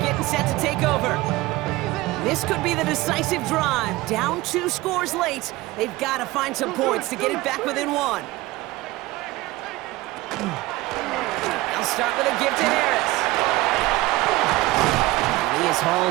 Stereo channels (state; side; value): quieter; left; 19.4 dB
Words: set to take over. This could be the decisive drive. Down 2 scores late. They've got to find some points to get it back within 1. They'll start with a give to Harris. And he is